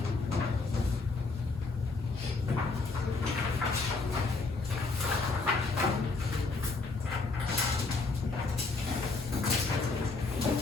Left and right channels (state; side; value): quieter; right; 3.8 dB